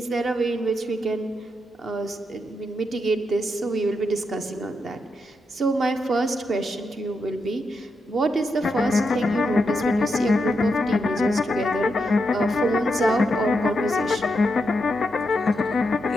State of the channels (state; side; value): normal; both; correlation 0.84